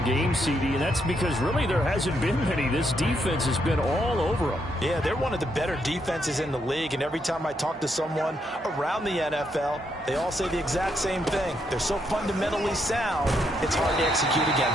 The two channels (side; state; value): both; normal; correlation 0.77